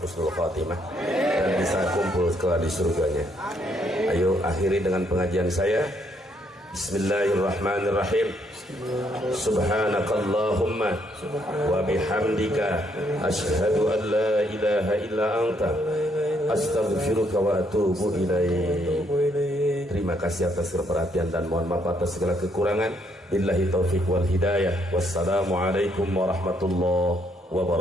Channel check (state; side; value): normal; both; correlation 0.72